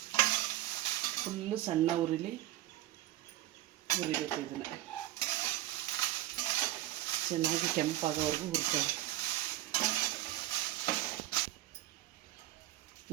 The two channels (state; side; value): quieter; left; 15.2 dB